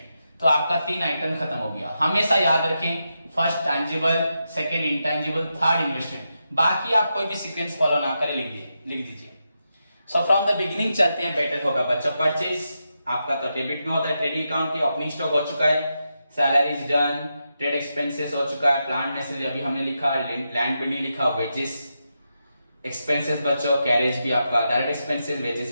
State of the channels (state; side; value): inverted; both; correlation -0.86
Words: तो आपका 3 आइटम खत्म हो गया। हमेशा याद रखें, first tangible, second intangible, third investment. बाकी आप कोई भी सीक्वेंस फॉलो ना करें, लिख दीजिए। सो फ्रॉम द बिगिनिंग चलते हैं, बेटर होगा बच्चों। परचेज आपका तो डेबिट में होता है, ट्रेडिंग अकाउंट की ओपनिंग स्टॉक हो चुका है, सैलरीज डन, ट्रेड एक्सपेंसेस हो चुका है, प्लांट मशीनरी अभी हमने लिखा, लैंड बिल्डिंग लिखा, वेजेस एक्सपेंसेस बच्चों, कैरेज भी आपका डायरेक्ट एक्सपेंसेस, वेजेस